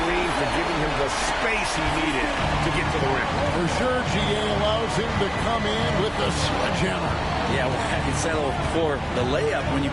for giving him the space he needed to get to the rim. For sure, GA allows him to come in with the sledgehammer. Yeah, well, I settled for the layup when you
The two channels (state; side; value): identical; both; correlation 1.00